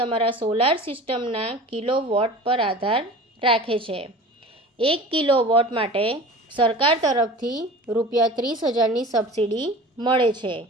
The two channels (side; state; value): both; normal; correlation 0.38